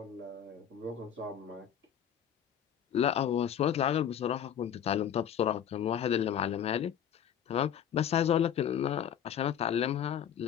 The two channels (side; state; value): right; quieter; 9.3 dB